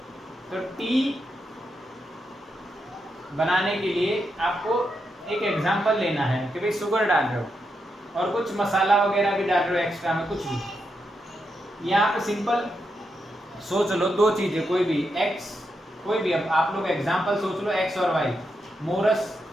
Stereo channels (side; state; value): both; normal; correlation 0.84